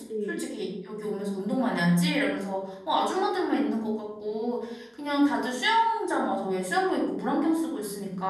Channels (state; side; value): identical; both; correlation 1.00